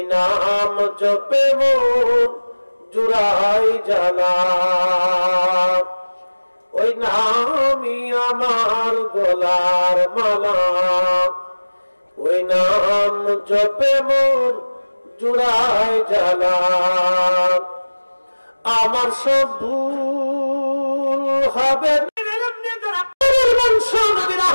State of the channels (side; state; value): both; inverted; correlation -1.00